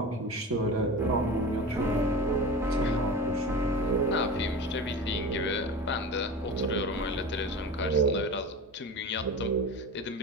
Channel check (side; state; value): both; normal; correlation 0.30